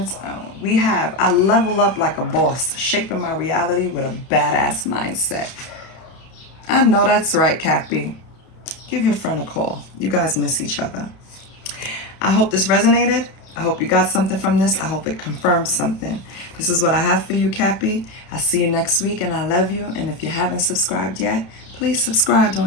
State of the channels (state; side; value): late; right; 31 ms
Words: own. I level up like a boss, shaping my reality with a badass mindset. I know that's right, Cappy. Give your friend a call. You guys miss each other. I hope this resonated. I hope you got something from this. I hope it confirms something. This is what I have for you, Cappy. I'll see you next week, and I love you. And if you haven't subscribed yet, please subscribe